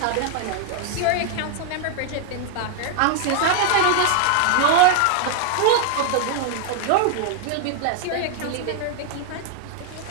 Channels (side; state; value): both; different; correlation 0.00